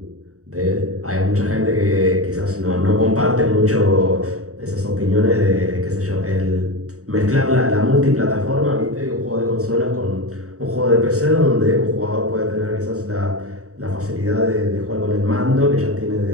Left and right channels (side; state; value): left; late; 0.65 ms